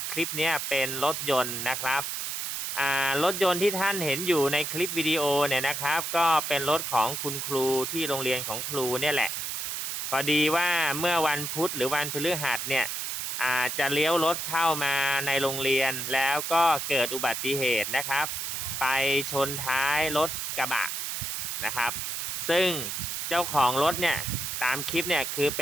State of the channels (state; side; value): noise; right; hiss, 3 dB below the sound